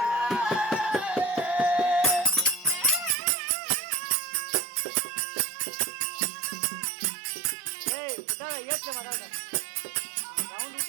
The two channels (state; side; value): drops out; left; at 3.1 s